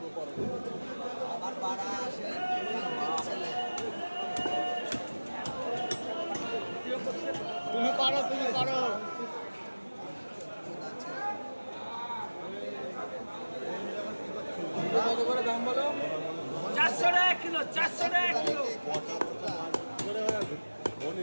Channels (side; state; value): both; inverted; correlation -1.00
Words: পরে। আবার বাড়া আসে তুমি পারো কত করে দাম বলো? 400 টাকা কিলো 400 টাকা কিলো।